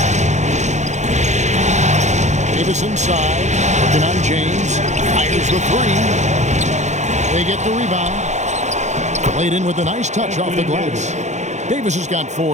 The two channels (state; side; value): late; left; 0.34 ms